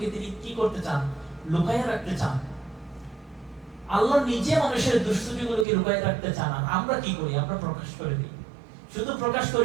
তিনি কি করতে চান, লুকাইয়ে রাখতে চান। আল্লাহ নিজে মানুষের দুষ্টুটিগুলোকে লুকাইয়ে রাখতে চান, আর আমরা কি করি, আমরা প্রকাশ করে দিই। শুধু প্রকাশ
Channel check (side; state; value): left; drops out; at 5.7 s